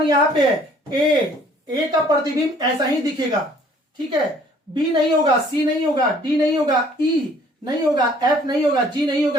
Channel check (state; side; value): normal; both; correlation 0.58